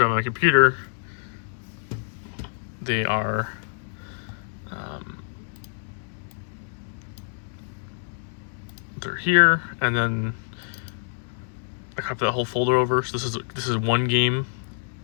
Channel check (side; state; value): right; silent; 61 dB below the other